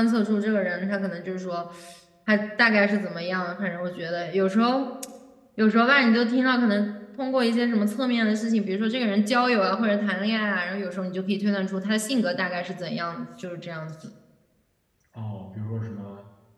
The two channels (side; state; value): both; identical; correlation 1.00